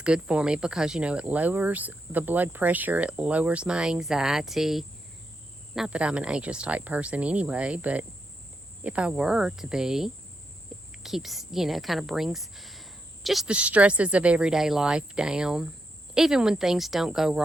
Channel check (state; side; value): normal; both; correlation 0.83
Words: good for me because, you know, it lowers the blood pressure, it lowers my anxiety. Not that I'm an anxious type person anyway, but if I were to be, it keeps, you know, kind of brings just the stresses of everyday life down. Even when things don't go